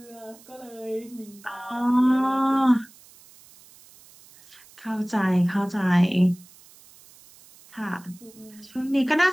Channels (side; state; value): right; noise; hiss, 24 dB below the sound